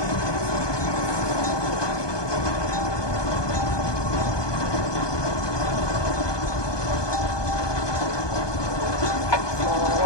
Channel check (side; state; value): right; late; 1.2 ms